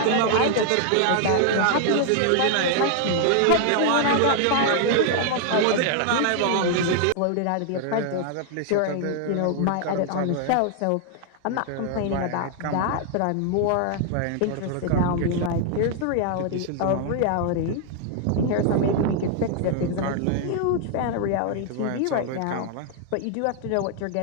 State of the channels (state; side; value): different; both; correlation 0.00